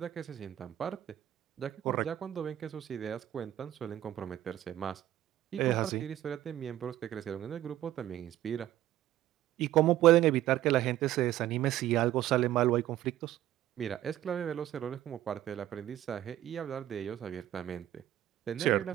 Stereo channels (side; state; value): left; quieter; 13.2 dB